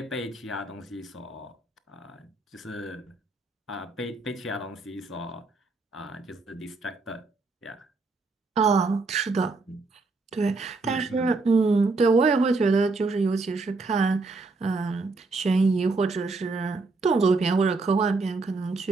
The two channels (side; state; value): left; quieter; 3.7 dB